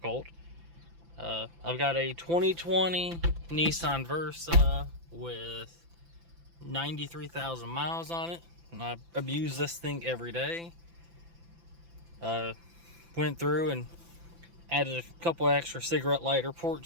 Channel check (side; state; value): left; late; 5.9 ms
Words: I've got a 2020 Nissan Versa with 93,000 miles on it, and I abuse this thing every day. Went through and added a couple extra cigarette lighter